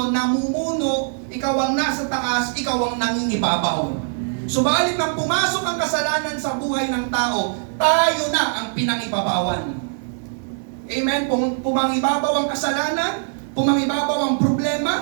namumuno, ikaw ang nasa taas, ikaw ang nangingibabaw. Subalit nang pumasok ang kasalanan sa buhay ng tao, tayo na ang pinangibabawan. Amen? Pumangibabaw ang kasalanan, pumangibabaw ang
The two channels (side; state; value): left; silent; digital silence